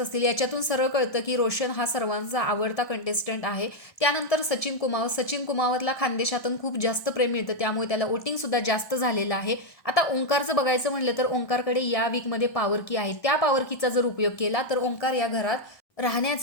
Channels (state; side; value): late; right; 1.6 ms